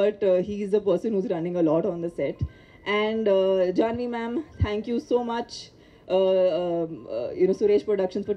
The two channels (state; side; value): identical; both; correlation 1.00